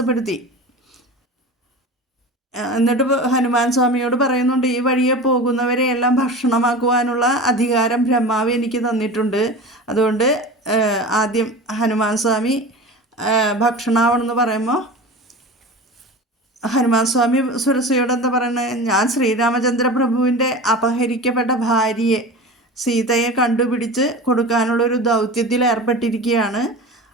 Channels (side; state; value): both; normal; correlation 0.32